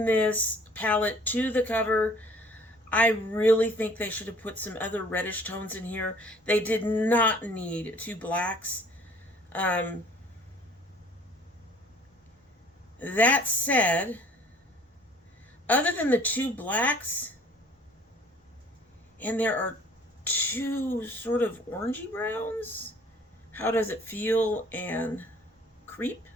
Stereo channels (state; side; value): normal; both; correlation 0.54